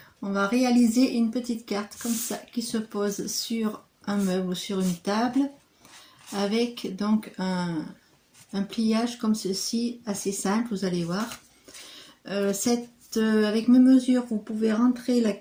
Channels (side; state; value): both; identical; correlation 1.00